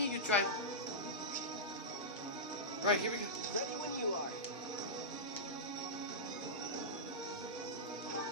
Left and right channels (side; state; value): both; normal; correlation -0.13